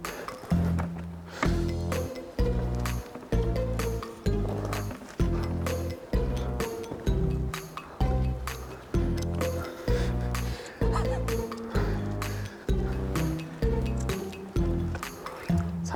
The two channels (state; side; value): identical; both; correlation 1.00